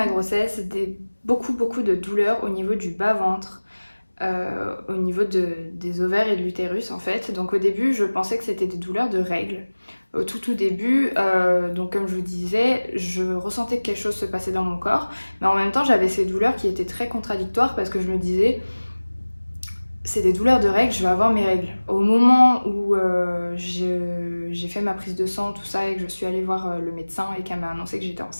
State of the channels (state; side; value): inverted; both; correlation -1.00